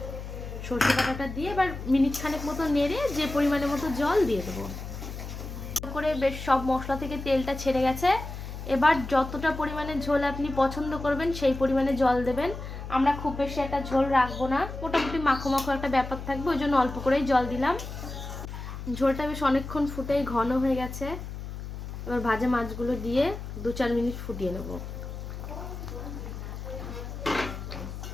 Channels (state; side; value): noise; left; hum, 9 dB below the sound